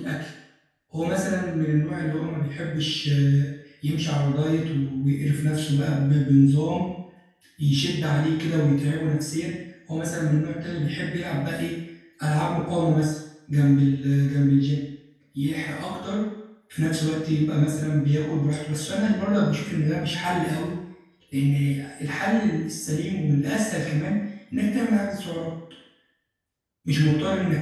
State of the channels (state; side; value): identical; both; correlation 1.00